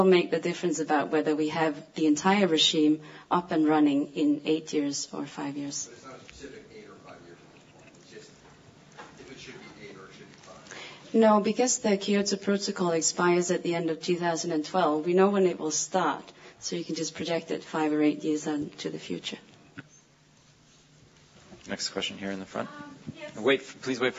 make the difference about whether we have the entire regime up and running in 8 years or 5 years. But it's not a specific 8 or 5 years. It's just if it should be 8 or it should be 5. No, because the Kyoto Protocol expires at the end of 2012, we know when it will start. So you can just project it 5 or 8 years into the future. Next question here in the front. Yes. Please wait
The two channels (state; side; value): identical; both; correlation 1.00